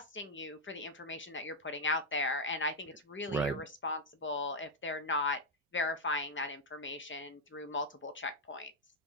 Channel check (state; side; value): normal; both; correlation 0.00